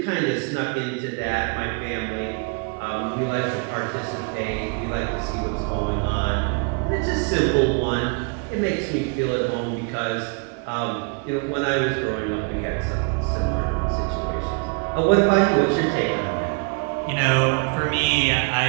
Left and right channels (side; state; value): left; quieter; 34.3 dB